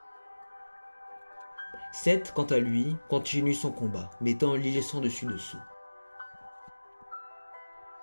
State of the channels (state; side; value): inverted; both; correlation -1.00